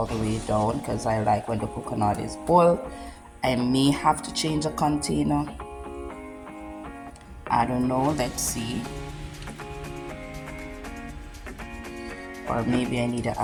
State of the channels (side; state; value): both; identical; correlation 1.00